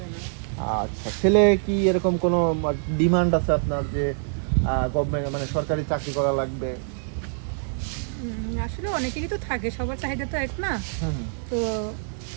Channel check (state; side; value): silent; left; 56 dB below the other